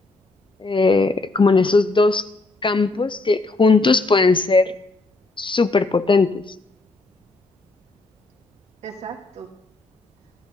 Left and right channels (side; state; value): right; quieter; 3.3 dB